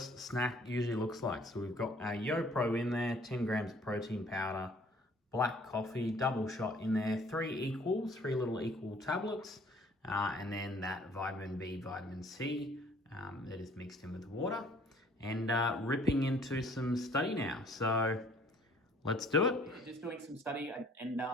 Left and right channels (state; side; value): normal; both; correlation 0.57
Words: snack usually looks like. So we've got our YoPro in there, 10 grams of protein powder, black coffee, double shot in there, 3 little equal tablets, and then that vitamin B, vitamin C that is mixed in with water, and ripping into some study now. So let's do it. Just doing some study, and